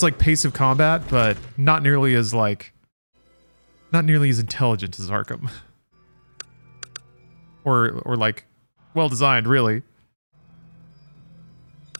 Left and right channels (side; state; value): both; inverted; correlation -1.00